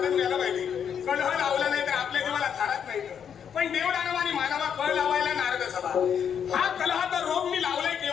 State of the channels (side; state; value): right; quieter; 8.0 dB